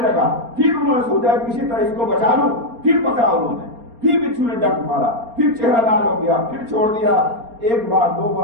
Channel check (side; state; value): left; late; 4.3 ms